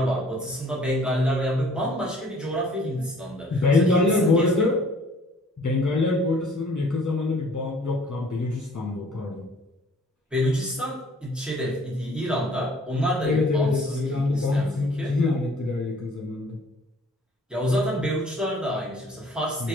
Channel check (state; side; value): normal; both; correlation 0.55